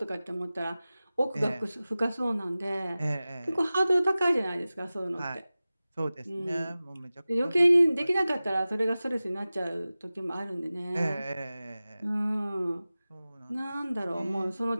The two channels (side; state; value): both; inverted; correlation -0.97